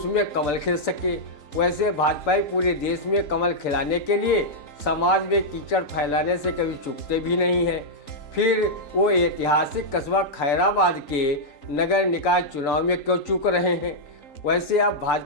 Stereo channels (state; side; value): late; right; 3.9 ms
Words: कमल खिल सके। वैसे भाजपाई पूरे देश में कमल खिलाने के लिए समाज में कीचड़ फैलाने से कभी चूकते भी नहीं हैं। फिर वो ऐतिहासिक कस्बा खैराबाद के नगर निकाय चुनाव में क्यों चूक रहे हैं। वैसे अब